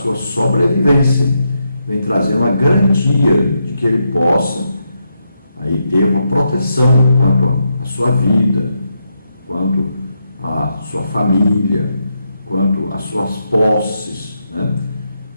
sobrevivência, vem trazendo uma garantia de que ele possa aí ter uma proteção quanto à sua vida, quanto à sua família, quanto às suas posses, né?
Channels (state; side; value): inverted; both; correlation -0.82